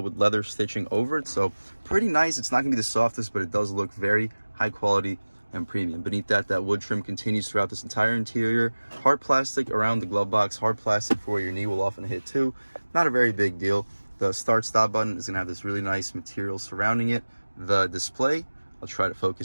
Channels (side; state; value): both; inverted; correlation -1.00